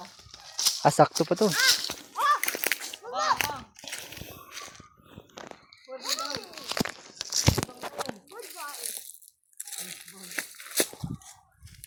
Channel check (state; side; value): identical; both; correlation 1.00